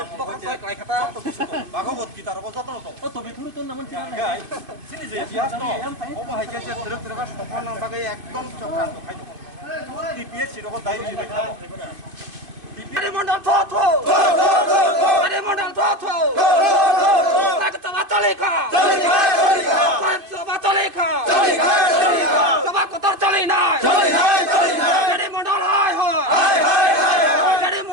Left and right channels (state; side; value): late; left; 2.5 ms